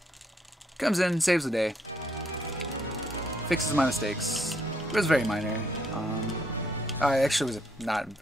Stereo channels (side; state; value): both; normal; correlation 0.71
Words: comes in, saves the day, fixes my mistakes. It was very minor. Actually, it was not